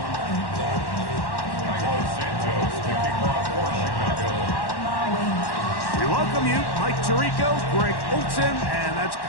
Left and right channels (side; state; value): right; late; 1.1 ms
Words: We welcome you, Mike Tirico, Greg Olson, and that's